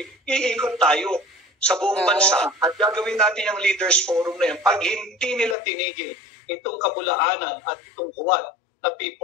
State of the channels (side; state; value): right; drops out; at 5.6 s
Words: iikot tayo sa buong bansa at gagawin natin yung leaders forum na yan pag hindi nila tinigil itong kabulaanan at itong huwad na